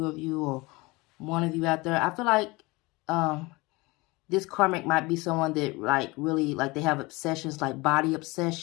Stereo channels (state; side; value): quieter; right; 23.6 dB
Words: of you or one of you out there. I feel like this karmic might be someone that, like, really, like, they have obsessions, like body